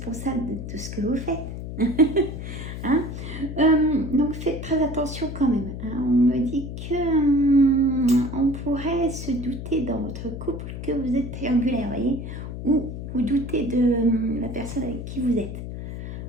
de tout ce que vous faites. Hein? Donc, faites très attention quand même. Hein? On me dit que on pourrait se douter dans votre couple que vous êtes triangulaire, voyez, ou vous doutez de la personne avec qui vous êtes.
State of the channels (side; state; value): left; noise; hum, 8 dB below the sound